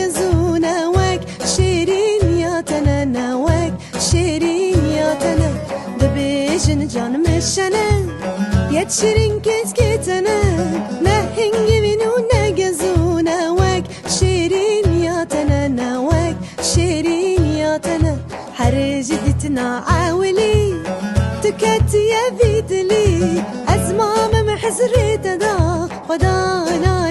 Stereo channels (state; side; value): identical; both; correlation 1.00